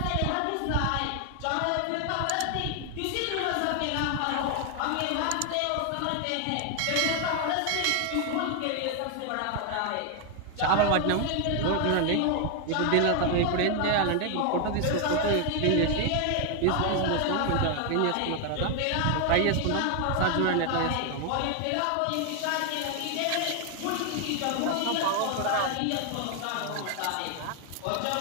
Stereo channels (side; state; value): both; different; correlation 0.01